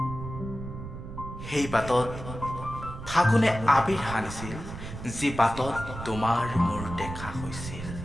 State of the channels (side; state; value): right; noise; rumble, 10 dB below the sound